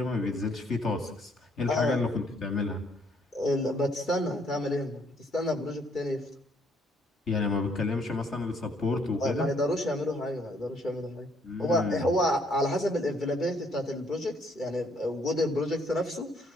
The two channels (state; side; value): normal; both; correlation 0.67